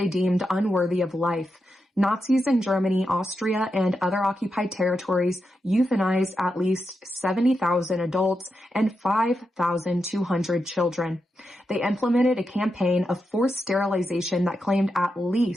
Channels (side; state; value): both; normal; correlation 0.87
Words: deemed unworthy of life. Nazis in Germany, Austria, and other occupied territories euthanized at least 70,000 adults and 5,200 children. They implemented a campaign of forced sterilization that claimed at